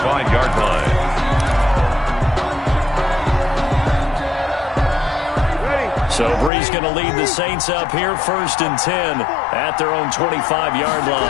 line. So Bree's going to lead the Saints up here 1st and 10 at their own 25-yard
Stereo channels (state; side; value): drops out; right; at 6.5 s